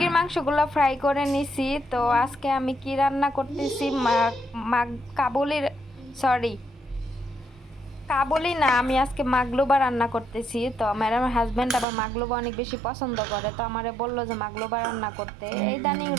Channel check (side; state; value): left; drops out; at 11.9 s